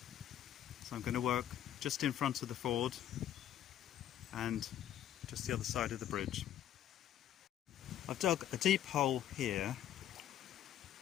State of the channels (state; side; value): quieter; right; 11.1 dB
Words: so I'm going to work just in front of the ford and just the other side of the bridge. I've dug a deep hole here,